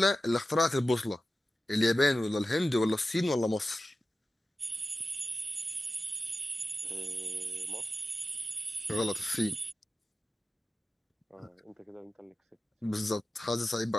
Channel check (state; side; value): normal; both; correlation 0.94